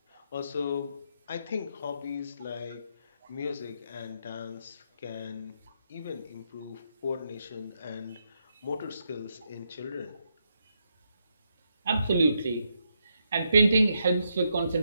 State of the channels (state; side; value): inverted; both; correlation -0.80